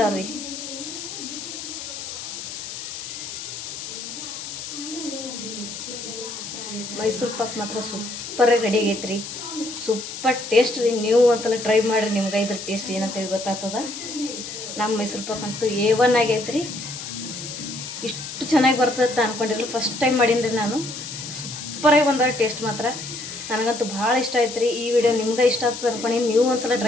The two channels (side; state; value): left; noise; hiss, 9 dB below the sound